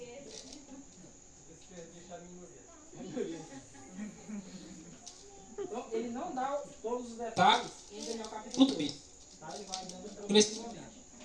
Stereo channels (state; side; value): identical; both; correlation 1.00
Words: Então, ele não dá todos os detalhes em Daniel capítulo 2. Tá? Ele vai dando progressivamente.